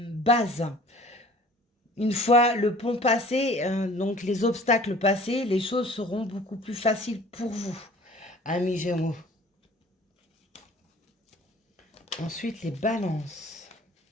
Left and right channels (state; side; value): normal; both; correlation 0.49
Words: bases. Une fois le pont passé, donc les obstacles passés, les choses seront beaucoup plus faciles pour vous, amis Gémeaux. Ensuite, les balances.